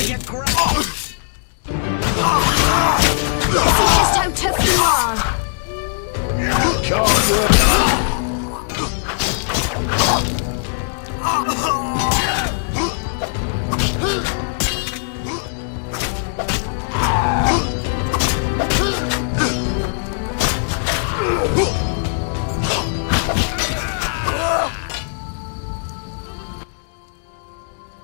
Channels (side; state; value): right; silent; digital silence